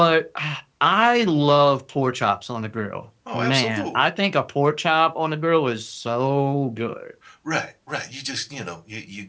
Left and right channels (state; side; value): identical; both; correlation 1.00